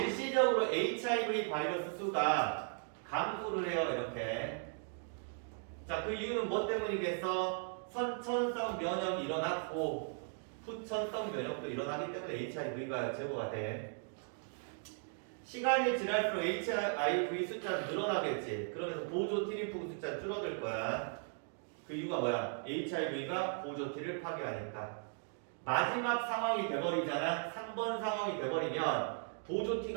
HIV 바이러스 수가 감소를 해요. 이렇게. 자, 그 이유는 뭐 때문이겠어? 선천성 면역이 일어났고 후천성 면역도 일어나기 때문에 HIV가 제거가 돼. 시간이 지날수록 HIV 숫자는 늘어나겠지. 그러면서 보조 T림프 숫자는 줄어들 거야. 그 이유가 뭐야? HIV가 보조 T를 파괴하니까. 마지막 상황이 돼버리잖아. 3번 상황이 돼버리면 보조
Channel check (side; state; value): left; silent; 53 dB below the other